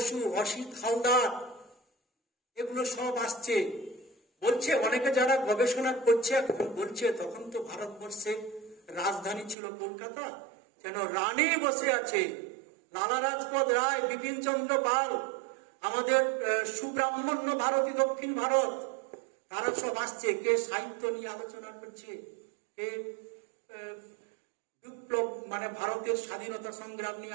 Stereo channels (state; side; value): drops out; left; at 9.6 s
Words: অসিত হালদার, এগুলো সব আসছে। বলছে অনেকে যারা গবেষণা করছে এখন বলছে তখন তো ভারতবর্ষের রাজধানী ছিল কলকাতা, যেন রানী বসে আছে। লালা রাজপথ রায়, বিপিন চন্দ্র পাল, আমাদের সুব্রাহ্মণ্য ভারতী দক্ষিণ ভারত, তারা সব আসছে। কে সাহিত্য নিয়ে আলোচনা করছে, কে বিপ্লব মানে ভারতের স্বাধীনতা সংগ্রাম